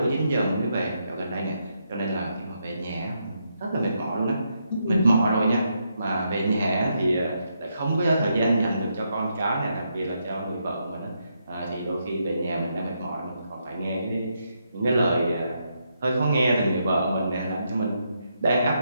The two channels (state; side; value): inverted; both; correlation -0.80